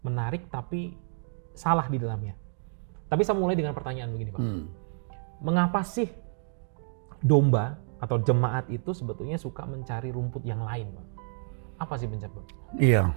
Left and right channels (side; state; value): left; silent; digital silence